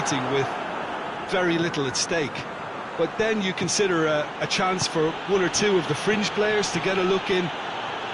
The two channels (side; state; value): both; identical; correlation 1.00